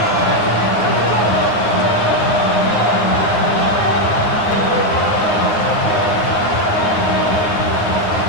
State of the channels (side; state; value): right; late; 9.6 ms